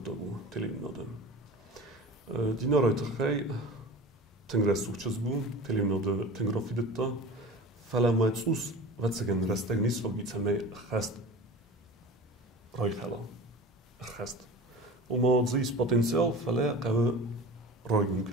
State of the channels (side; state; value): both; normal; correlation 0.35